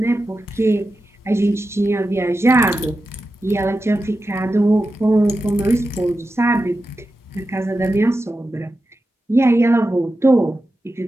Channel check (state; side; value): normal; both; correlation 0.91